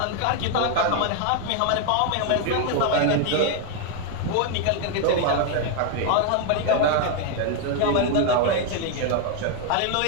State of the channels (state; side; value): different; both; correlation 0.01